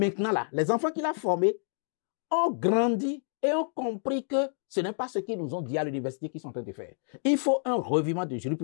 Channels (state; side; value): silent; right; digital silence